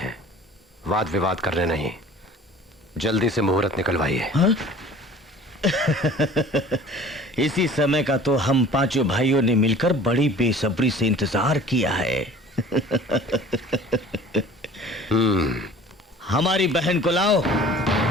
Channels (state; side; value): normal; both; correlation 0.47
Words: वाद विवाद करने नहीं। जल्दी से मुहूर्त निकलवाइए। हाँ? इसी समय का तो हम पांचों भाइयों ने मिलकर बड़ी बेसब्री से इंतजार किया है। हमारी बहन को लाओ।